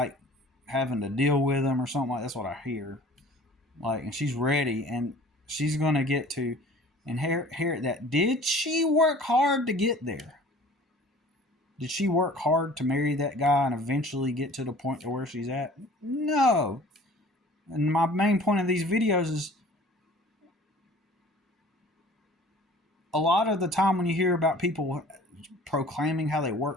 having to deal with him or something like that's what I hear. Like, and she's ready, and she's gonna get to inherit that. Did she work hard to get there? Did she work hard to marry that guy and eventually get to the point to where she's at? No. And my main point of these videos is, a lot of the time when you hear about people proclaiming how they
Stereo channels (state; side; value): normal; both; correlation 0.47